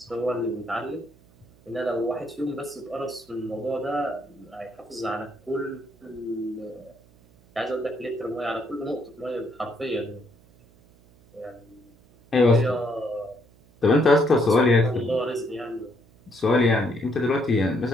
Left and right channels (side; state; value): right; noise; hum, 28 dB below the sound